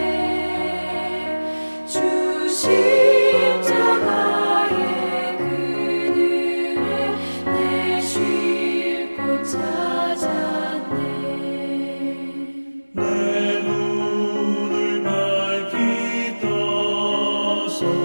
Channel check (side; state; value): both; inverted; correlation -1.00